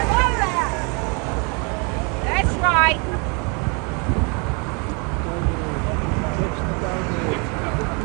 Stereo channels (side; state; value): left; quieter; 33.3 dB